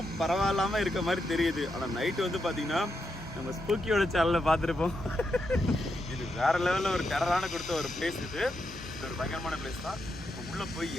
பரவாயில்லாமல் இருக்க மாதிரி தெரியுது. ஆனால் நைட்டு வந்து பார்த்தீங்கன்னா நம்ம ஸ்பூக்கியோட சேனலில் பார்த்துருப்போம். இது வேறு லெவலில் ஒரு டெரரான கொடுத்த ஒரு பிளேஸ். இது ஒரு பயங்கரமான பிளேஸ் தான். இப்போ உள்ளே போய்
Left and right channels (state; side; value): normal; both; correlation 0.83